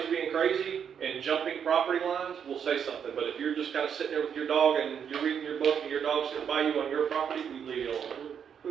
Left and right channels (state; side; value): quieter; left; 7.8 dB